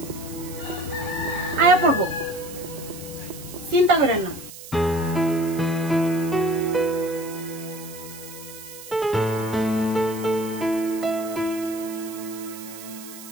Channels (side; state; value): right; noise; hiss, 14 dB below the sound